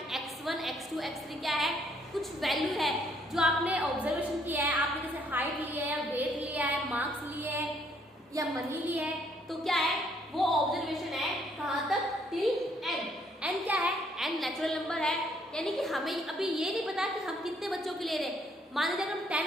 x1 x2 x3 क्या है, कुछ वैल्यू है जो आपने ऑब्जर्वेशन किया है, आपने जैसे हाइट ली है या वेट लिया है, मार्क्स लिए है या मनी ली है, तो क्या है वो ऑब्जर्वेशन है कहाँ तक, टिल n। n क्या है, n नेचुरल नंबर है, यानी कि हमें अभी ये नहीं पता कि हम कितने बच्चों के ले रहे हैं। मान लीजिए अगर हम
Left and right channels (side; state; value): both; normal; correlation 0.67